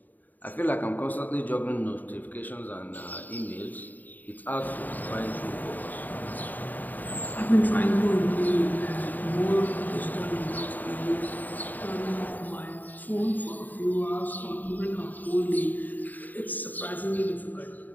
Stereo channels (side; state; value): right; late; 0.085 ms